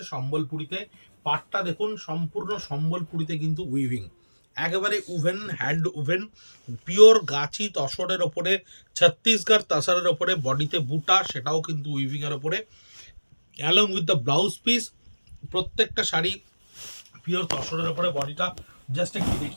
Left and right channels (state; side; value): inverted; both; correlation -1.00